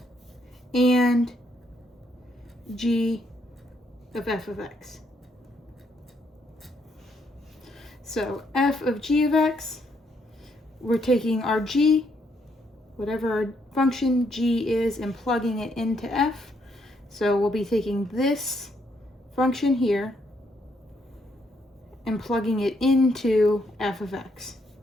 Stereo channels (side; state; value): both; normal; correlation 0.74